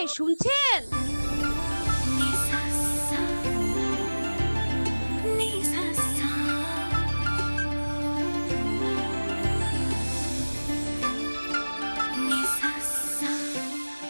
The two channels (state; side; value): inverted; both; correlation -1.00